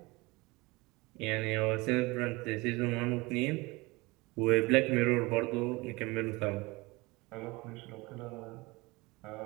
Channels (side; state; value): left; quieter; 23.6 dB